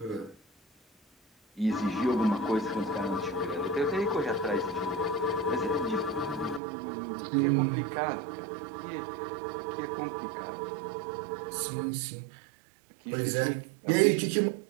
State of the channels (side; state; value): left; drops out; at 6.6 s